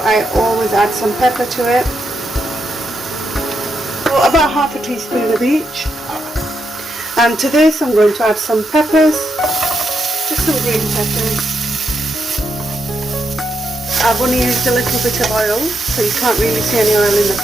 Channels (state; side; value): normal; both; correlation 0.82